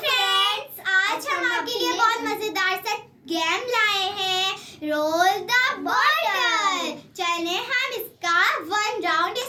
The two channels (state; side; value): identical; both; correlation 1.00